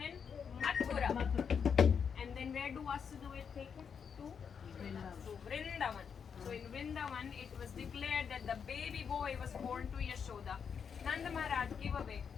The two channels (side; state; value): right; quieter; 6.8 dB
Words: in Mathura. And then where do Vasudeva take him? To Vrindavan. So in Vrindavan, it was declared that the baby boy was born to Yashoda. Nanda Maharaj gave away